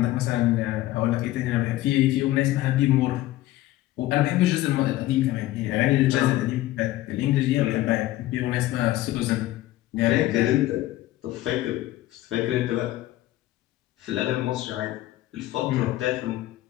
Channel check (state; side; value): quieter; right; 15.9 dB